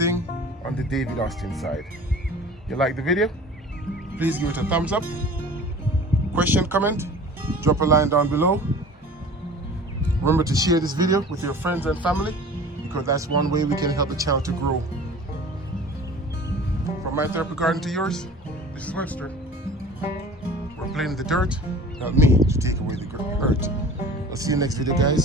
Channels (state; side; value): normal; both; correlation 0.43